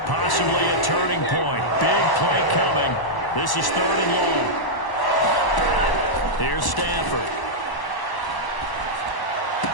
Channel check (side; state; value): right; late; 1.0 ms